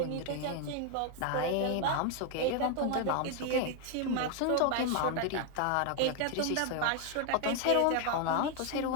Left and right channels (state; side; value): different; both; correlation 0.00